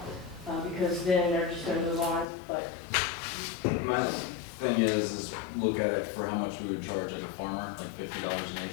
because then they're just gonna move on, but, My thing is look at it for how much we would charge like a farmer, like $50 an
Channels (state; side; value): drops out; right; at 2.2 s